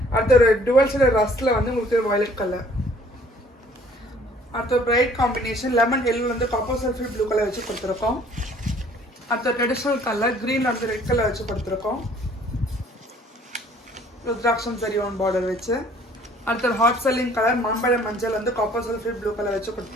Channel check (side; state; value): both; normal; correlation 0.57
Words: அடுத்த ஒரு டுவல் ஷேடர் ரஸ்ட்டில் வந்து உங்களுக்கு வயலட் கலர். அடுத்த பிரைட் காம்பினேஷன் லெமன் எல்லோ வந்து காப்பர் சல்ஃபேட் ப்ளூ கலர் வச்சு கொடுத்துருக்கோம். அடுத்த ட்ரெடிஷ்னல் கலர் க்ரீன் வந்து ரெட் கலர் வச்சு கொடுத்துருக்கோம். ருத்ராட்சம் சரியோன் பார்டர் வச்சு. அடுத்த ஹாட் செல்லிங் கலர் மாம்பழ மஞ்சள் வந்து காப்பர் சல்ஃபேட் ப்ளூ கலர் வச்சு